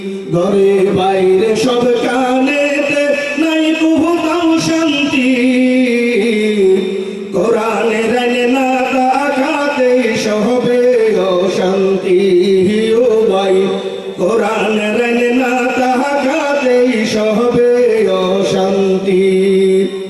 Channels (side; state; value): both; identical; correlation 1.00